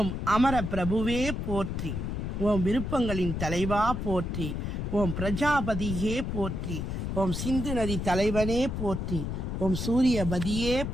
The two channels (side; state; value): left; noise; rumble, 3 dB below the sound